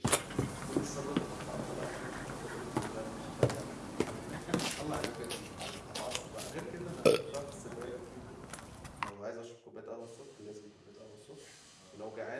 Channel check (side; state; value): both; identical; correlation 1.00